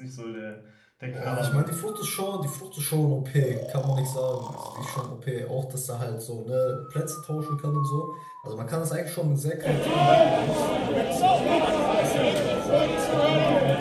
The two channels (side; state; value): both; identical; correlation 1.00